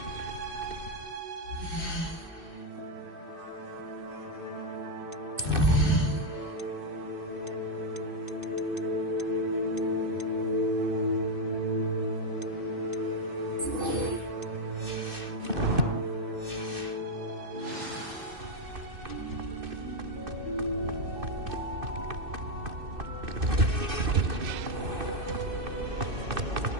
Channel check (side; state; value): left; late; 2.6 ms